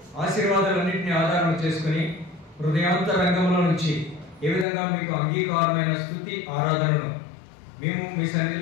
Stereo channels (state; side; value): drops out; right; at 4.7 s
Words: ఆశీర్వాదాలన్నింటినీ ఆధారం చేసుకుని హృదయాంతరంగంలో నుంచి ఏ విధంగా మీకు అంగీకారమైన స్తుతి ఆరాధనను మేము మీ